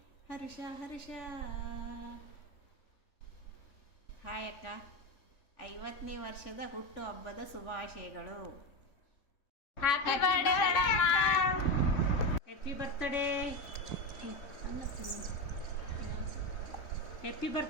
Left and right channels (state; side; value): late; right; 3.5 ms